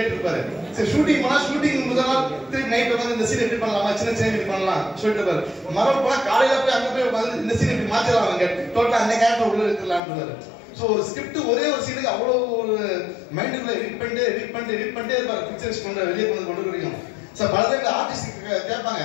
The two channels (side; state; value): right; drops out; at 10.0 s